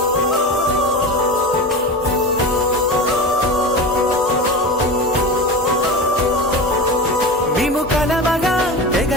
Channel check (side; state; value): both; normal; correlation 0.27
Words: మేము కలవగా తెగ